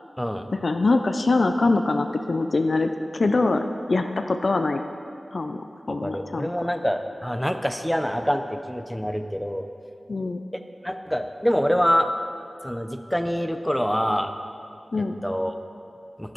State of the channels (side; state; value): both; normal; correlation 0.98